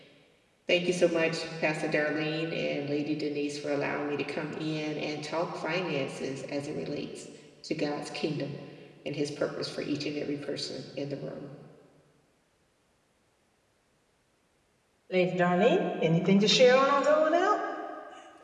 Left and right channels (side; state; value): both; identical; correlation 1.00